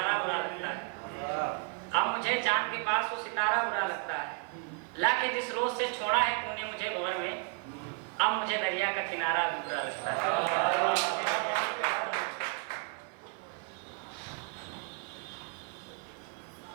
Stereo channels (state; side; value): quieter; left; 36.4 dB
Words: बुरा लगता है, अब मुझे चांद के पास वो सितारा बुरा लगता है, लाके जिस रोज से छोड़ा है तूने मुझे भंवर में, अब मुझे दरिया का किनारा भी बुरा लगता है।